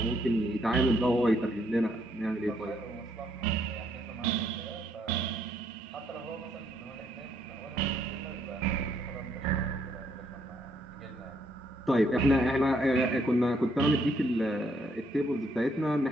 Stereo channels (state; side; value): normal; both; correlation 0.72